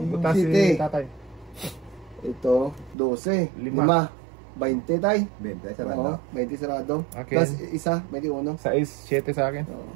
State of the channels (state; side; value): drops out; left; at 3.0 s